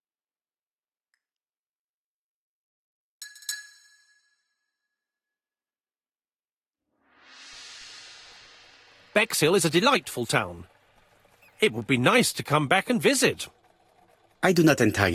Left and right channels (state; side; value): identical; both; correlation 1.00